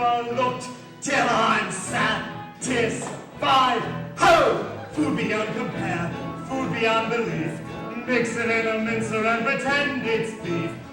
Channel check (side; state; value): both; identical; correlation 1.00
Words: till I'm satisfied. 5. Ho! Food beyond compare, food beyond belief. Mix it in a mincer and pretend it's beef.